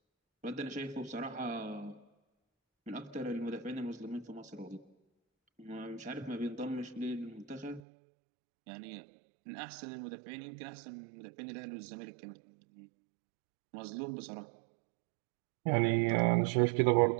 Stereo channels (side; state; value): left; drops out; at 7.8 s